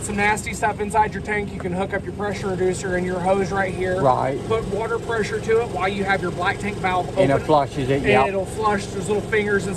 some nasty stuff inside your tank, you can hook up your pressure reducer and your hose right here. Right. Put water pressure to it while you have your black tank valve open. And it flushes it, And it'll flush. There's little fingers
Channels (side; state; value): both; identical; correlation 1.00